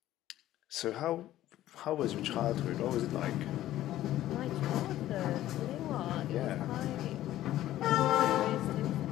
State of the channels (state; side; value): quieter; right; 13.8 dB